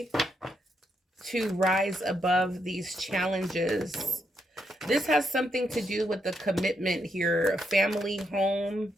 to rise above these challenges? This has something to do with the commitment here. Family, home,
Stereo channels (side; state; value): both; normal; correlation 0.79